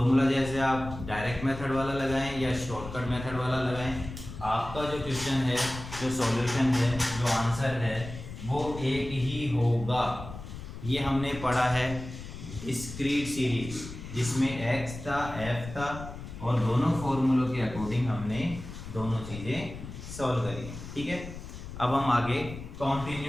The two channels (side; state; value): left; noise; rumble, 11 dB below the sound